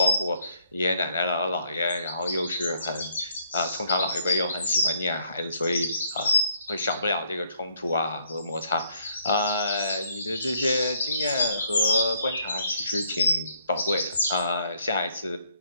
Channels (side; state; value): both; inverted; correlation -0.69